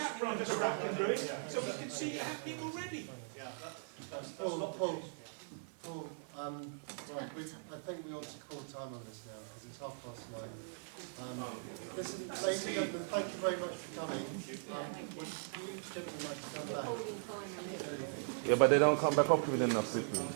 So we can see it happening already. Yeah, that's not Paul. Paul, right, I think we ought to call time on this now because it's 9:30. Listen, ladies and gentlemen, thank you very much for coming. Would you gentlemen like to come back? Yeah, but they don't come back up with enough Cyprian.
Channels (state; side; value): silent; left; 51 dB below the other